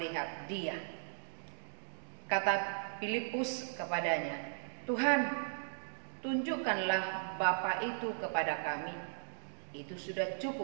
Dia." Kata Filipus kepadanya, "Tuhan, tunjukkanlah Bapa itu kepada kami. Itu sudah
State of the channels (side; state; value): left; silent; digital silence